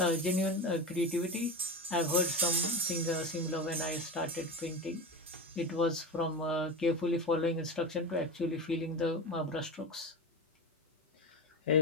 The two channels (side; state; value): both; normal; correlation 0.23